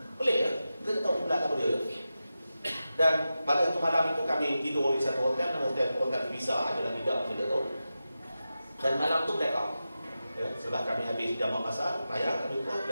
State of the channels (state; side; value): inverted; both; correlation -0.92